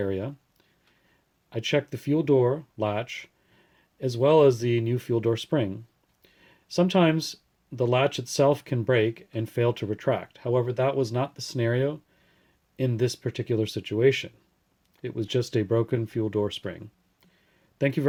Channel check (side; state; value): both; identical; correlation 1.00